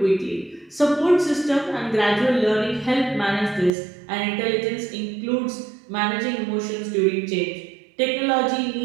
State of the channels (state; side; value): drops out; left; at 3.7 s